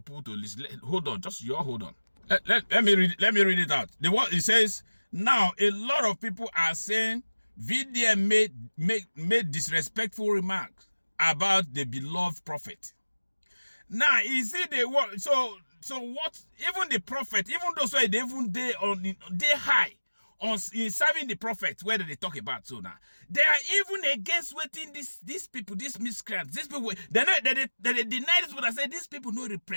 people to listen. Hold on, hold on. Let me read it out. It says, now a lot of people are saying VDM made disrespectful remarks about the beloved prophet. Now, is it the what? So what? Even the prophet, even those who they high on in serving the prophet, where do they talk about so now? They are even against waiting these people, these miscreants, these people. They deny this, but I say these people don't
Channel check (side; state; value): both; inverted; correlation -1.00